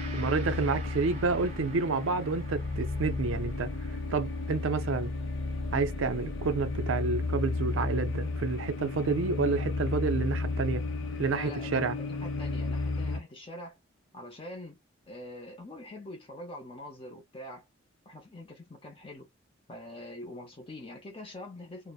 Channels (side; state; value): both; normal; correlation 0.33